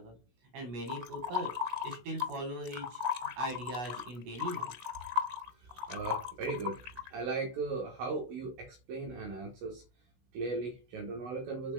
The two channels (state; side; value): late; left; 16 ms